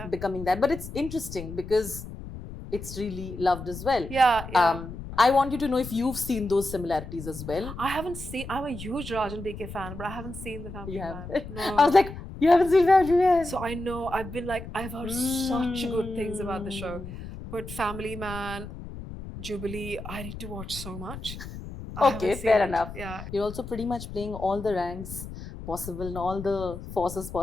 becoming that. But it's interesting because it's really loved as well. I want you to know if you've seen those similarities as well. I haven't seen. I'm a huge Rajan BK fan, but I haven't seen the Family Man. No. I was like, you haven't seen Family Man? So I know. I've been like, I've heard such good things about the show, but Family Man, Jubilee, I need to watch so much. Okay, fair enough. Yeah. You're also pretty much playing all the ranks possible and all the forces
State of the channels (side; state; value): left; noise; rumble, 11 dB below the sound